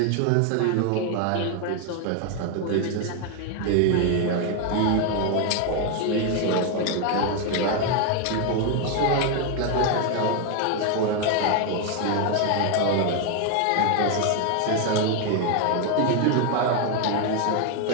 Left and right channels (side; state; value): both; different; correlation 0.01